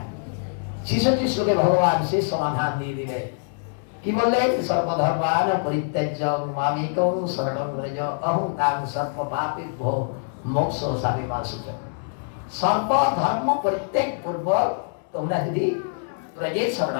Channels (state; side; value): silent; right; 62 dB below the other